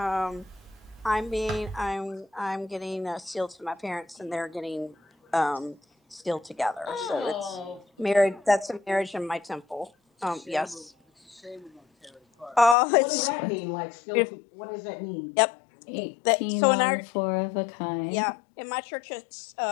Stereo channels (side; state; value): right; drops out; at 12.8 s